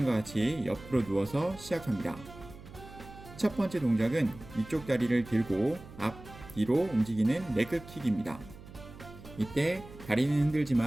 같이 옆으로 누워서 시작합니다. 첫 번째 동작은 위쪽 다리를 들고 앞, 뒤로 움직이는 레그킥입니다. 이때 다리는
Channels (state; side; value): noise; right; hum, 17 dB below the sound